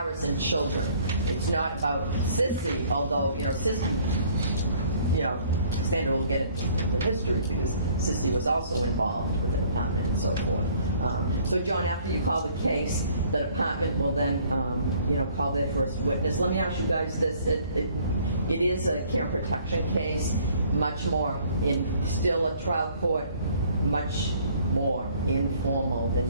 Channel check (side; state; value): both; inverted; correlation -0.58